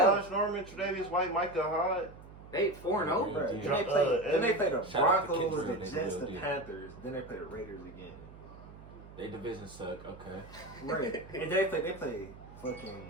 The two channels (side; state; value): right; noise; hum, 18 dB below the sound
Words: Norman, Tre'Davious White, Micah Hyde. They 4-0. Yeah. Bruh, Then Dro- they play. Then they play the Shout out to Broncos, Kendrick, the they Jets, will the do. Panthers. Then they play the Raiders again. They division suck. Okay. Right. And they play